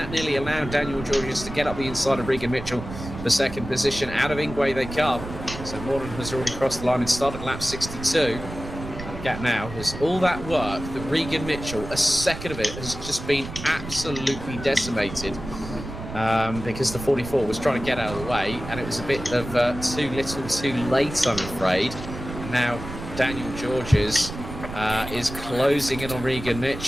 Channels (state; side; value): noise; right; rumble, 10 dB below the sound